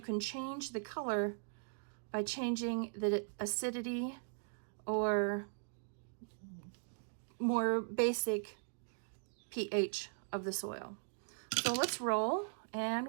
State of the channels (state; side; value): silent; left; digital silence